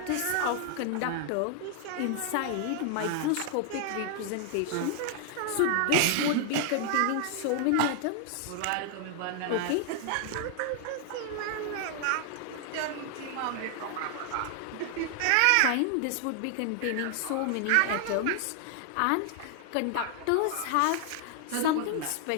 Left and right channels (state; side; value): different; both; correlation 0.00